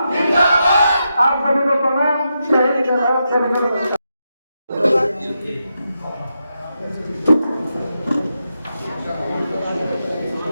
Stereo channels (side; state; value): both; inverted; correlation -0.86